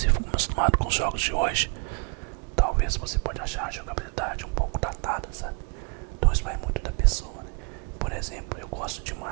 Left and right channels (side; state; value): left; quieter; 34.6 dB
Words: for acostumado com os jogos de hoje, talvez você pode achar a jogabilidade um pouco datada, sabe? Então isso vai muito da pessoa, né? Por exemplo, eu gosto